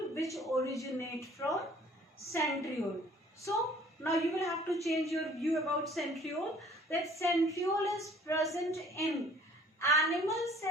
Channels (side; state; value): both; normal; correlation 0.54